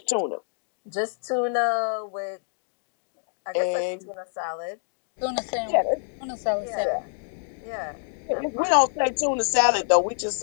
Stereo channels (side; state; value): right; silent; digital silence